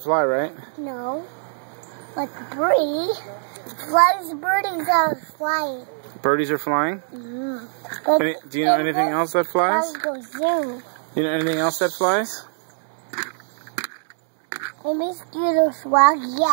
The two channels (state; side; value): silent; left; 64 dB below the other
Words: fly, right? No. Like a birdie. Birdies are flying. Birdies are flying? Mm-hmm. Do you know anything else that flies? Go zoom. You know anything else that flies? The mosquitoes fly,